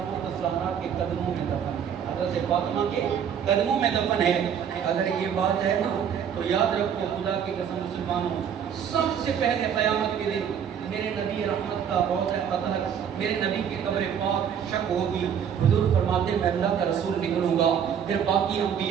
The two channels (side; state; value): left; quieter; 8.2 dB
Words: الزہرا کے قدموں میں دفن ہے، حضرت فاطمہ کے قدموں میں دفن ہے۔ اگر یہ بات ہے نا تو یاد رکھو، خدا کی قسم مسلمانوں، سب سے پہلے قیامت کے دن میرے نبی رحمت کا روضہ اطہر، میرے نبی کی قبر پاک شک ہوگی۔ حضور فرماتے میں اللہ کا رسول نکلوں گا، پھر باقی